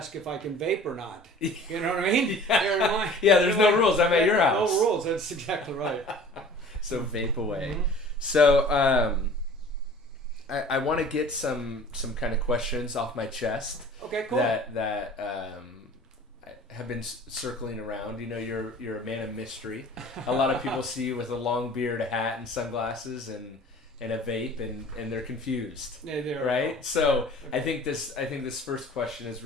if I can vape or not. You know what I mean? Yeah, there's no rules. I'm at your house. No rules. That's exactly right. So vape away. Mm-hmm. So I want to get some kind of questions off my chest. Okay, cool. That have been circling around. You know, you're a man of mystery. A lot of people see you with a long beard, a hat, and sunglasses, and a vape, and they're confused. Yeah, they're right. So I think this first question is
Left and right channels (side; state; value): both; normal; correlation 0.45